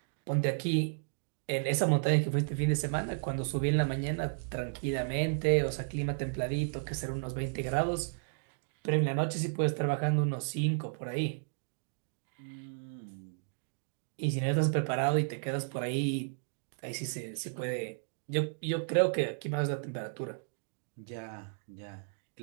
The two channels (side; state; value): left; silent; digital silence